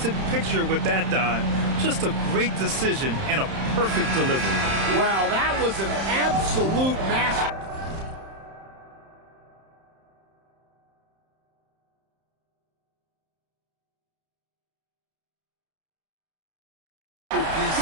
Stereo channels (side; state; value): left; late; 31 ms